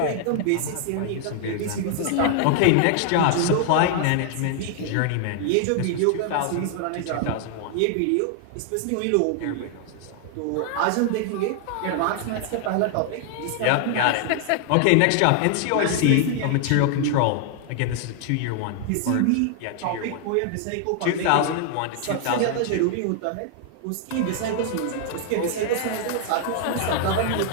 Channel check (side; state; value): both; different; correlation 0.00